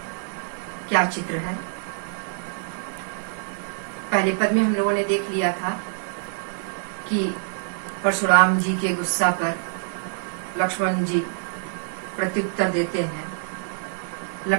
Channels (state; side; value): silent; left; 61 dB below the other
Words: क्या चित्र है। पहले पद में हम लोगों ने देख लिया था कि परशुराम जी के गुस्सा पर लक्ष्मण जी प्रत्युत्तर देते हैं।